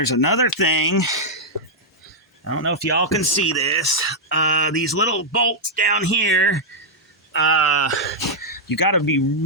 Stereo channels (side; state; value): both; normal; correlation -0.05